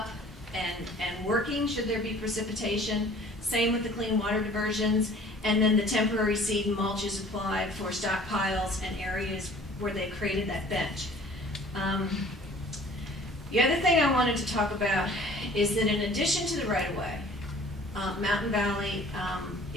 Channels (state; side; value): normal; both; correlation 0.50